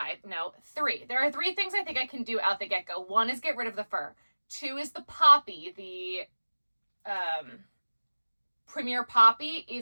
3. There are 3 things I think I can do out the get-go. 1 is get rid of the fur. 2 is the poppy. The Premier Poppy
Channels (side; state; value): both; inverted; correlation -1.00